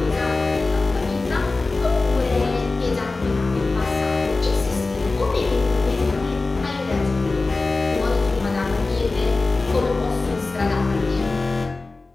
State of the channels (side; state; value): right; quieter; 3.5 dB